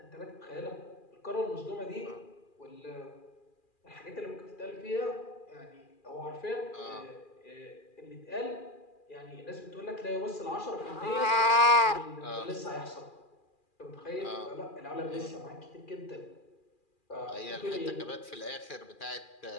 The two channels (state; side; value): late; right; 2.4 ms